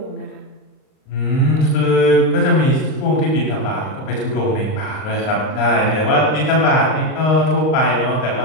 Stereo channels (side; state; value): right; late; 38 ms